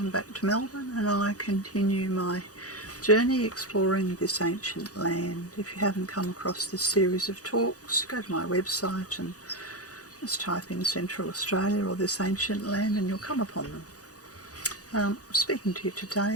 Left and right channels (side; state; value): right; late; 0.67 ms